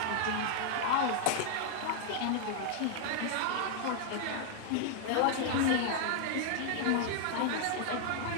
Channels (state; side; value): different; both; correlation 0.00